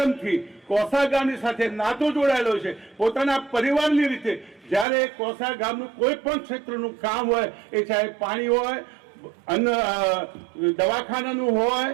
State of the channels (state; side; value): drops out; left; at 4.9 s